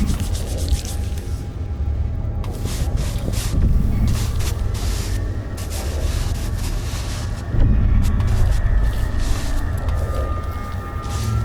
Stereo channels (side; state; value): both; identical; correlation 1.00